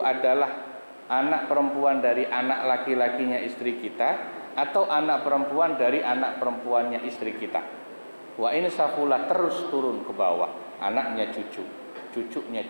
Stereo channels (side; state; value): both; inverted; correlation -1.00